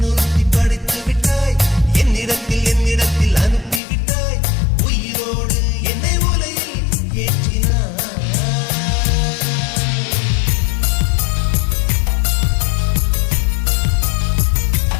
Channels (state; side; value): drops out; right; at 3.8 s